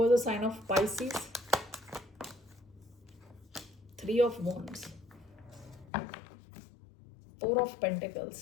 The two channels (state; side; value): drops out; right; at 5.9 s